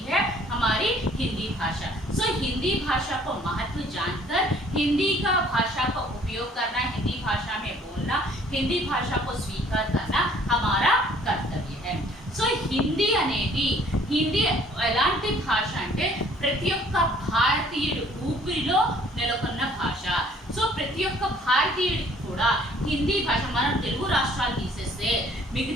है हमारी हिंदी भाषा। हिंदी भाषा को महत्व जानकर हिंदी का भाषा का उपयोग करना, हिंदी भाषा में बोलना, हिंदी भाषा को स्वीकार करना हमारा कर्तव्य है। హిందీ ఎలాంటి భాష అంటే ప్రతి ఒక్క భారతీయుడు ఊపిరిలో నెలకొన్న భాష. ప్రతి ఒక్క భారతీయుడికి కూడా హిందీ భాష, మనం తెలుగు రాష్ట్రాలు తీసేస్తే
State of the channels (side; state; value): both; normal; correlation 0.58